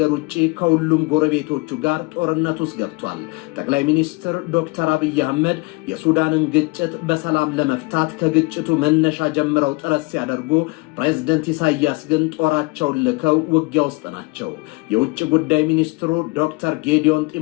ውጪ ከሁሉም ጎረቤቶቹ ጋር ጦርነት ውስጥ ገብቷል። ጠቅላይ ሚኒስትር ዶክተር አብይ አህመድ የሱዳንን ግጭት በሰላም ለመፍታት ከግጭቱ መነሻ ጀምረው ጥረት ሲያደርጉ፣ ፕሬዝደንት ኢሳያስ ግን ጦራቸውን ልከው ውጊያ ውስጥ ናቸው። የውጭ ጉዳይ ሚኒስትሩ ዶክተር ጌዲዮን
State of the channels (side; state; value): right; quieter; 27.0 dB